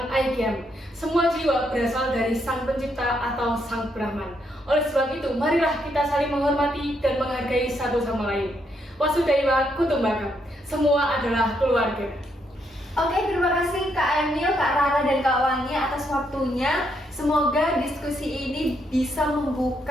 Aikyam. Semua jiwa berasal dari Sang Pencipta atau Sang Brahman. Oleh sebab itu, marilah kita saling menghormati dan menghargai satu sama lain. Wasudhaiwa Kutumbakam, semua adalah keluarga. Oke, terima kasih Kak Emil, Kak Rara, dan Kak Wangi atas waktunya. Semoga diskusi ini bisa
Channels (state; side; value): normal; both; correlation 0.76